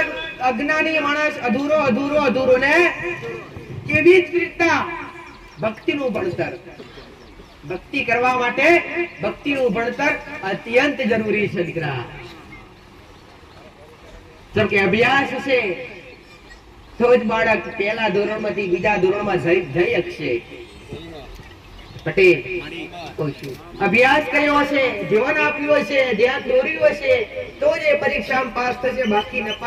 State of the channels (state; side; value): identical; both; correlation 1.00